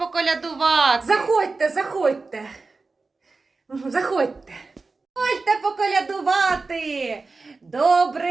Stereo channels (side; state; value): left; quieter; 3.9 dB